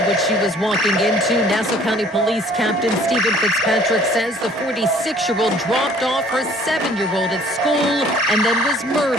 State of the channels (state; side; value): normal; both; correlation 0.55